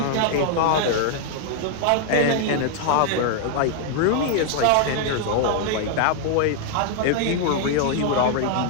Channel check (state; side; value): different; both; correlation 0.00